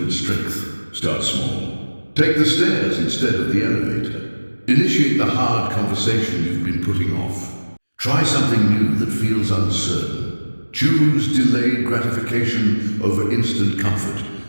strength. Start small. Take the stairs instead of the elevator. Initiate the hard conversation you've been putting off. Try something new that feels uncertain. Choose delayed gratification over instant comfort,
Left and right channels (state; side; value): inverted; both; correlation -1.00